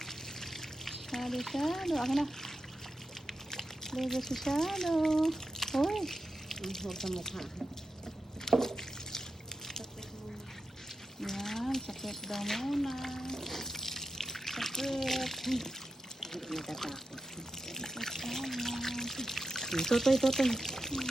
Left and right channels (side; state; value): both; normal; correlation 0.89